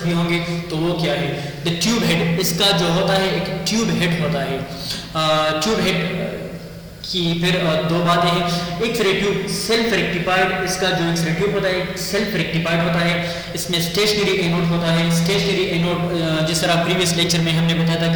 بھی ہوں گے. تو وہ کیا ہے؟ دا ٹیوب ہیڈ, اس کا جو ہوتا ہے ایک ٹیوب ہیڈ ہوتا ہے. ٹیوب ہیڈ کی پھر دو باتیں ہیں, x ray tube self rectified, اس کا جو ایکس رے ٹیوب ہوتا ہے سیلف ریکٹیفائڈ ہوتا ہے, اس میں اسٹیشنری اینوڈ ہوتا ہے. اسٹیشنری اینوڈ جس طرح پریویس لیکچر میں ہم نے بتایا تھا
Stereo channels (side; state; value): both; identical; correlation 1.00